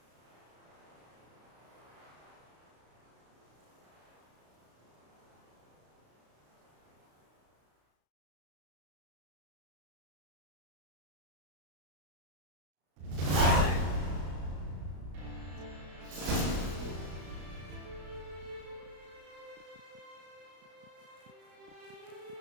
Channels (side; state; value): left; late; 33 ms